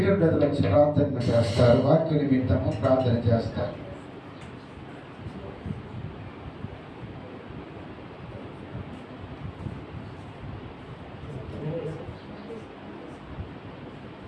బ్రదర్ వచ్చి ప్రార్థన చేస్తారు, వాక్య నిమిత్తము ప్రార్థన చేస్తారు.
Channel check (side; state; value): both; identical; correlation 1.00